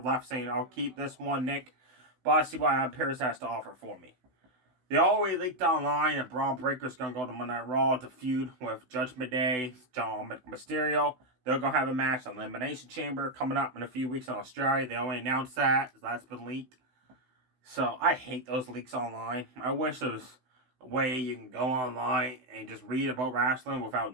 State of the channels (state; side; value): late; left; 16 ms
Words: saying, I'll keep this one, Nick, but I see what Adam Pearce has to offer for me. They always leaked online that Braun Breaker's going to go to Monday Night Raw to feud with Judgment Day, John Mysterio. They're going to have a match on Elimination Chamber coming up in a few weeks in Australia. They only announced that. That's been leaked. So I hate those leaks online. I wish there was way you can go online and just read about wrestling